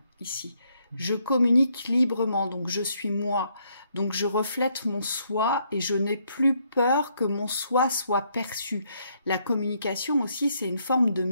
ici. Je communique librement, donc je suis moi, donc je reflète mon soi et je n'ai plus peur que mon soi soit perçu. La communication aussi, c'est une forme de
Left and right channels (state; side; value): inverted; both; correlation -0.72